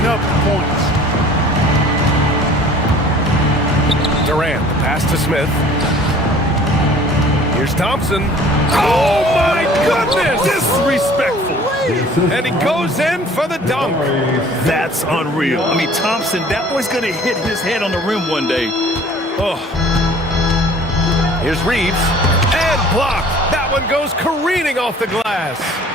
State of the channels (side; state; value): both; normal; correlation 0.50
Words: up the points. Pass to Smith. Here's Thompson. Oh, my goodness! Disrespectful. And he goes in for the dunk. That's unreal. I mean, Thompson, that boy's going to hit his head on the rim one day. Oh. Here's Reeves. And blocked. That one goes careening off the glass.